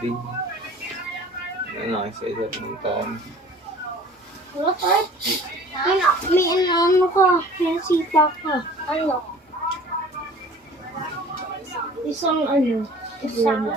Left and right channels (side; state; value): both; normal; correlation 0.47